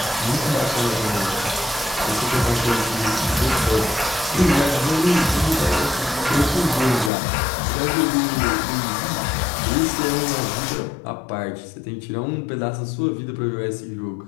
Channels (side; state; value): right; drops out; at 7.1 s